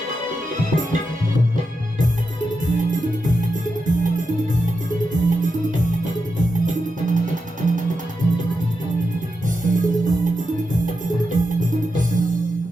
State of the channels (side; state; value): both; normal; correlation 0.88